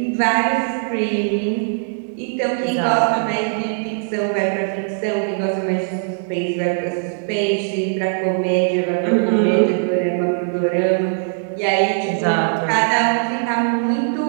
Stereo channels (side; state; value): left; silent; digital silence